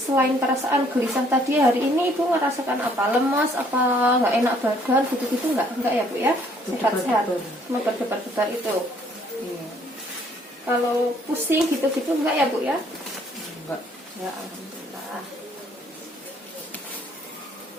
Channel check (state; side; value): normal; both; correlation 0.63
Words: perasaan gelisah tadi, hari ini ibu merasakan apa? Lemas, apa nggak enak badan, gitu-gitu nggak? Enggak ya bu ya? Sehat-sehat. Cuma berdebar-debar itu. Iya. Kalau pusing gitu-gitu enggak ya bu ya? Enggak. Ya alhamdulillah.